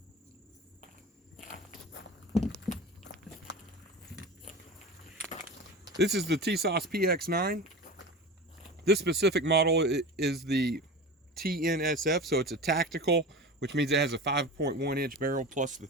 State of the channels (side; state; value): both; normal; correlation 0.30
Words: This is the Tisas PX9. This specific model is the TNSF, so it's a tactical, which means it has a 5.1 inch barrel plus the